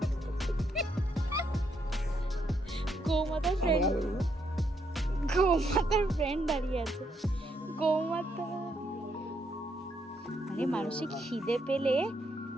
গৌমাতার ফ্রেন্ড দাঁড়িয়ে আছে। গৌমাতা, আরে মানুষের খিদে পেলে,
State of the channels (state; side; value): normal; both; correlation 0.76